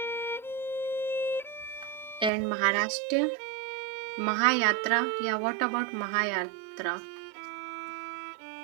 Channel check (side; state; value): left; drops out; at 2.3 s